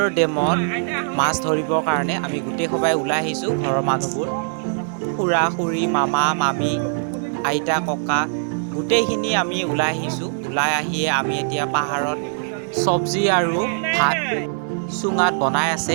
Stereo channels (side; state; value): left; silent; digital silence